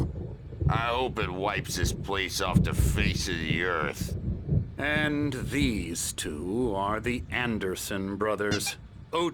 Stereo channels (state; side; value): identical; both; correlation 1.00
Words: I hope it wipes this place off the face of the earth. And these two are the Anderson brothers,